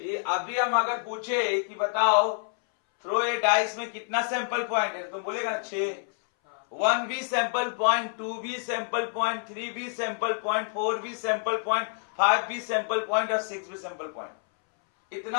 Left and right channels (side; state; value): right; silent; 60 dB below the other